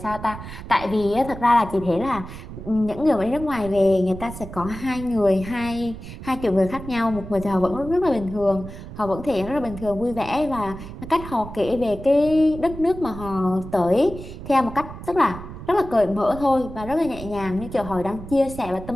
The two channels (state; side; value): noise; right; rumble, 12 dB below the sound